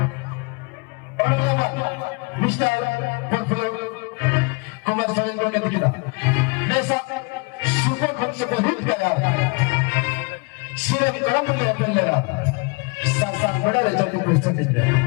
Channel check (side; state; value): right; quieter; 29.9 dB